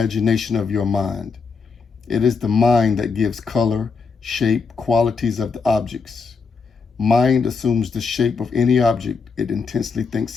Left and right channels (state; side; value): quieter; right; 5.0 dB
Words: of your mind. It is the mind that gives color, shape, qualities of the objects. Mind assumes the shape of any object it intensely